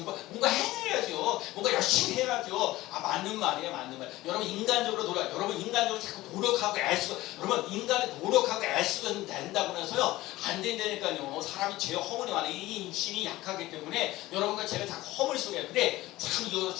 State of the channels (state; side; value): quieter; right; 17.5 dB